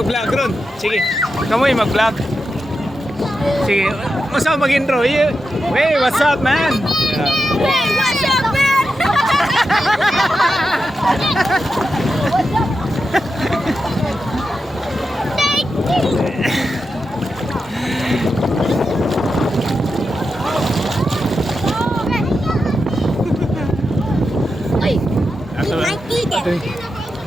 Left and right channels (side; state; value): both; normal; correlation 0.88